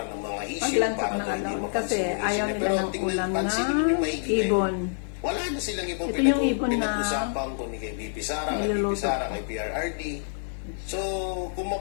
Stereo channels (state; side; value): silent; right; 59 dB below the other